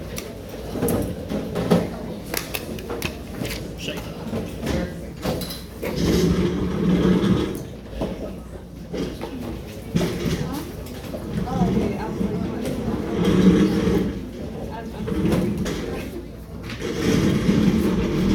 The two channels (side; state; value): both; identical; correlation 1.00